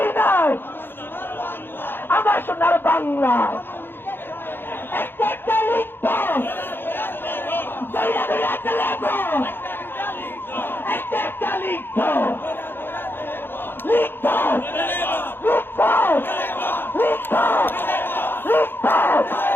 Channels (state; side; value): late; right; 0.10 ms